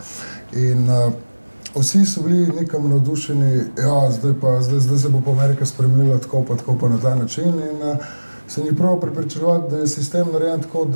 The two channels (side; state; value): both; inverted; correlation -1.00